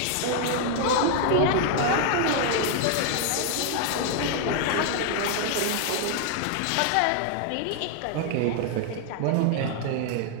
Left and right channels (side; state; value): both; different; correlation 0.00